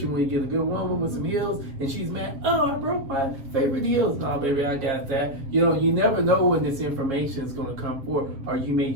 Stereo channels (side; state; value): left; late; 7.4 ms